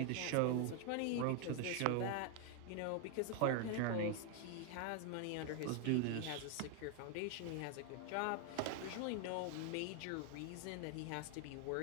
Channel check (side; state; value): both; different; correlation 0.00